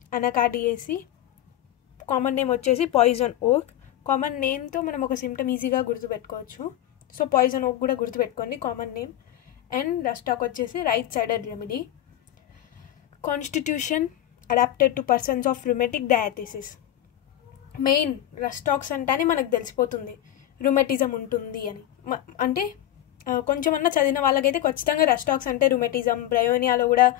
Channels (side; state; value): right; quieter; 12.7 dB